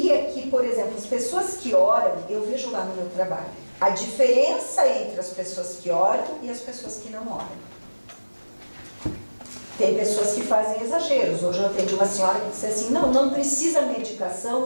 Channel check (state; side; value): inverted; both; correlation -1.00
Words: que, por exemplo, as pessoas que oram, eu vejo lá no meu trabalho, a diferença entre as pessoas que oram e as pessoas que não oram. Tem pessoas que fazem exageros. Hoje eu atendi uma senhora que disse assim, não precisa